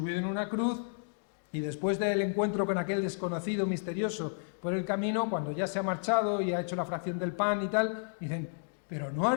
en una cruz, y después del encuentro con aquel desconocido misterioso por el camino, cuando ya se ha marchado y ha hecho la fracción del pan y tal, dicen, pero ¿no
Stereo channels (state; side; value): silent; right; digital silence